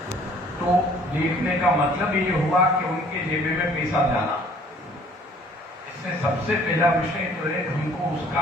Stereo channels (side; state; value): both; normal; correlation 0.56